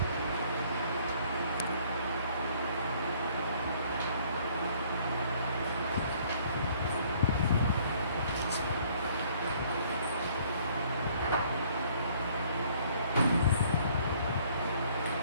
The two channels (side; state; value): both; inverted; correlation -0.60